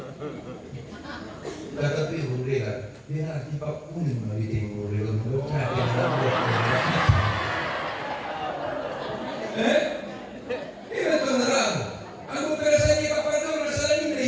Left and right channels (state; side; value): identical; both; correlation 1.00